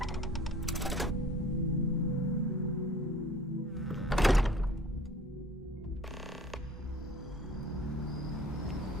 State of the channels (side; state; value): both; normal; correlation 0.47